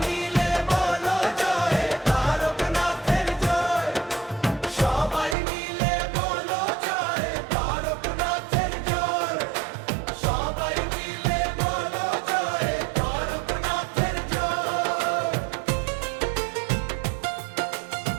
মিলে বলো জয় তারকনাথের জয়, সবাই মিলে বলো জয় তারকনাথের জয়, সবাই মিলে বলো জয় তারকনাথের জয়।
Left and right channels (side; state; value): left; drops out; at 5.4 s